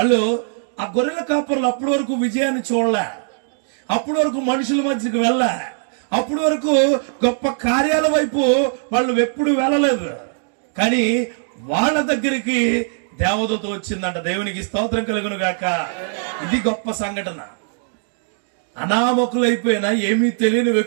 ఆ గొర్రెల కాపరులు అప్పటి వరకు విజయాన్ని చూడలే, అప్పటి వరకు మనుషుల మధ్యకి వెళ్ళా, అప్పటి వరకు గొప్ప కార్యాల వైపు వాళ్ళు ఎప్పుడు వెళ్ళలేదు. కానీ వాళ్ళ దగ్గరికి దేవదూత వచ్చిందంట. దేవునికి స్తోత్రం కలుగును గాక. ఇది గొప్ప సంఘటన. అనామకులైపోయినా ఏమీ తెలియని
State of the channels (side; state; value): left; silent; digital silence